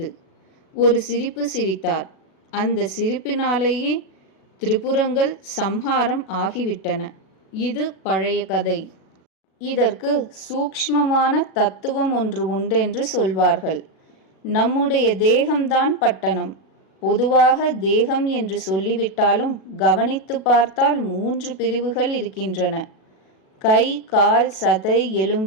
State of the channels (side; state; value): right; late; 37 ms